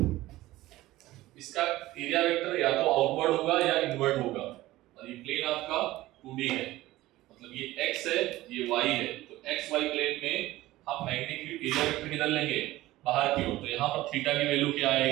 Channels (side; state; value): left; quieter; 17.0 dB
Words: इसका एरिया वेक्टर या तो आउटवर्ड होगा या इनवर्ड होगा, और ये प्लेन आपका 2D है, मतलब ये x है, ये y है। तो x y प्लेन में हम मैग्नेटिक फील्ड एरिया वेक्टर किधर लेंगे? बाहर की ओर। तो यहाँ पर थीटा की वैल्यू क्या